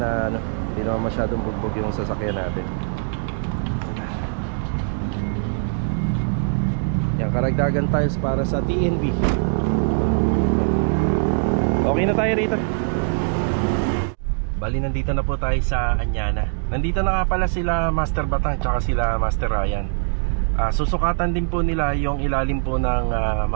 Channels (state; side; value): silent; left; digital silence